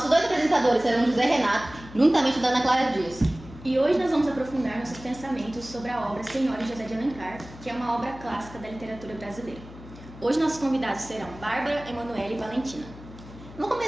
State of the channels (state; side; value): noise; left; hum, 17 dB below the sound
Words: dois apresentadores serão José Renato, juntamente da Ana Clara Dias. E hoje nós vamos aprofundar nossos pensamentos sobre a obra Senhora José de Alencar, que é uma obra clássica da literatura brasileira. Hoje nossos convidados serão Bárbara, Emanuele e Valentina. Vamos